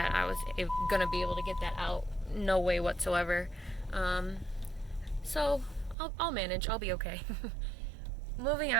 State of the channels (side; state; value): left; drops out; at 6.0 s